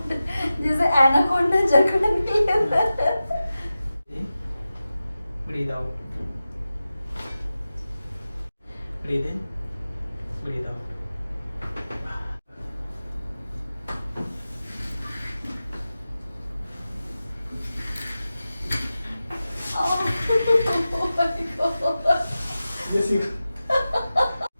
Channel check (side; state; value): both; inverted; correlation -0.94